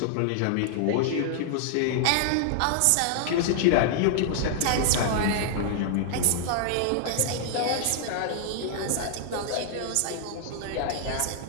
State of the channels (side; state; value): both; different; correlation -0.01